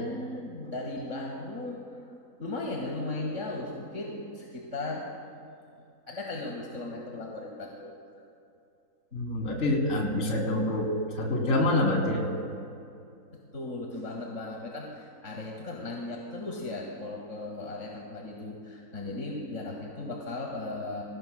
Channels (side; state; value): left; late; 3.9 ms